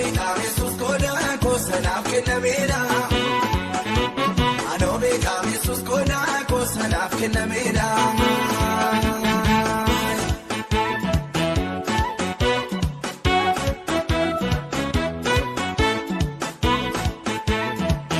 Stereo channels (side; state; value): both; identical; correlation 1.00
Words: kamesus koda kosanaf kinameda Anobe kamesus koda kosanaf kinameda